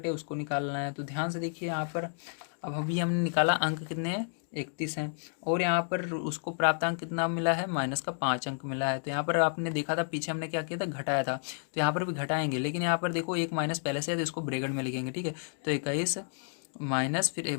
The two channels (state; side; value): silent; right; 57 dB below the other